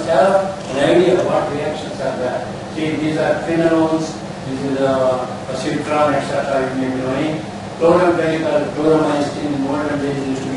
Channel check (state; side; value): identical; both; correlation 1.00